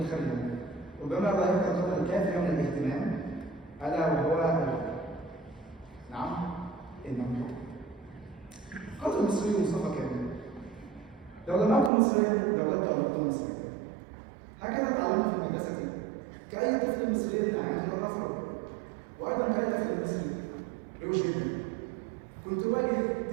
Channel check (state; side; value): drops out; left; at 11.9 s